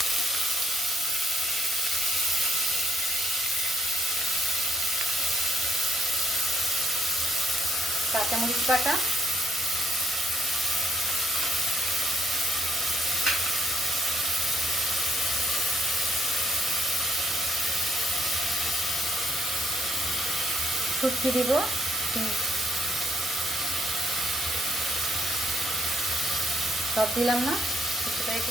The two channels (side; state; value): both; normal; correlation 0.71